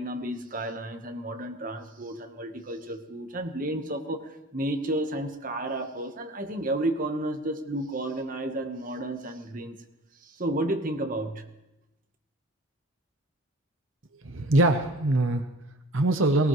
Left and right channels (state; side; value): normal; both; correlation 0.43